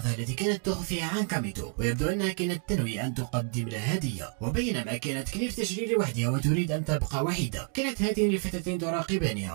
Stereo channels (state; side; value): quieter; left; 36.0 dB